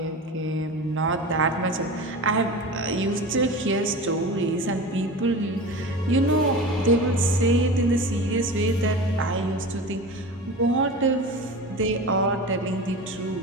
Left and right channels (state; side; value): normal; both; correlation 0.31